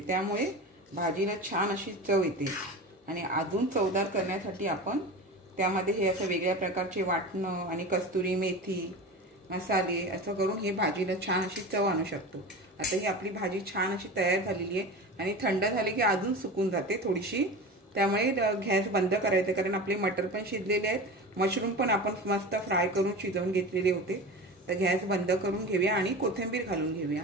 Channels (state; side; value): normal; both; correlation 0.30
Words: भाजीला छान अशी चव येते। आणि अजून चवदार करण्यासाठी आपण त्यामध्ये हे असं वेगळ्या प्रकारचे वाटणं आणि कस्तुरी मेथी मसाले असं करून हे भाजीला छान अशी चव आणू शकतो। आता ही आपली भाजी छान अशी तयार झालेली आहे। आणि थंड झाली की अजून सुकून जाते थोडीशी, त्यामुळे गॅस बंद करायचं, कारण आपले मटर पण शिजलेले आहेत, मशरूम पण आपण मस्त फ्राय करून शिजवून घेतलेले होते। तर गॅस बंद करून घेऊया आणि कोथिंबीर घालून घेऊया।